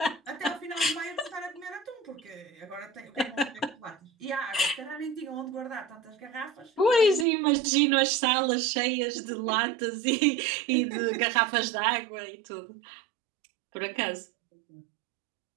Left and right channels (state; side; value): drops out; left; at 7.2 s